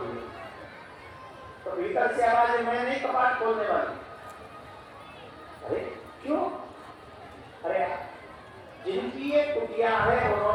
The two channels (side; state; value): both; identical; correlation 1.00